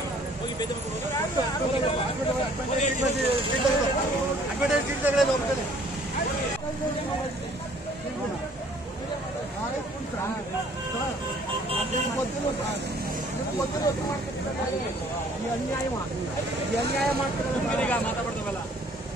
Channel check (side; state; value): both; normal; correlation 0.57